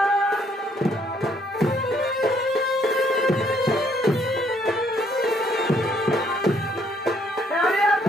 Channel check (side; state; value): both; normal; correlation 0.67